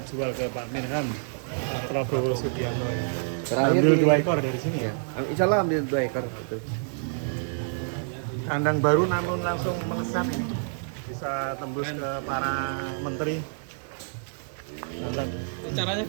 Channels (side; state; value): left; silent; 60 dB below the other